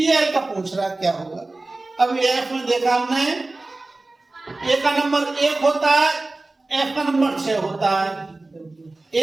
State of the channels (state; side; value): quieter; left; 3.1 dB